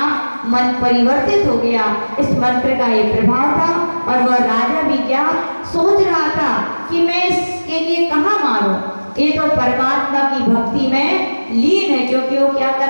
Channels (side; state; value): both; inverted; correlation -1.00